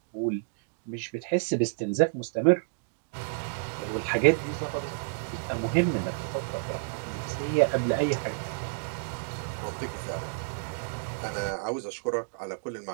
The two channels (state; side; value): silent; left; digital silence